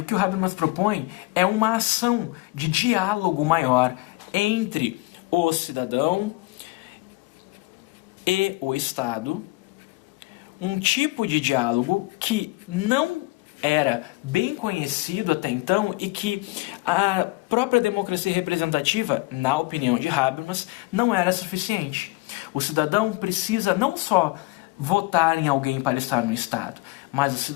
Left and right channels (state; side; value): quieter; right; 22.6 dB